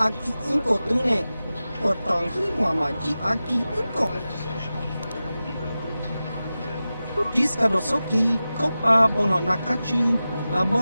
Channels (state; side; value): inverted; both; correlation -0.95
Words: inko tune. Potong hitwama ji aki inko. Jiskadosoki, kopa bono nakachu.